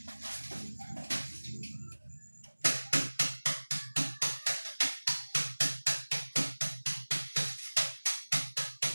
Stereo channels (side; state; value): both; inverted; correlation -1.00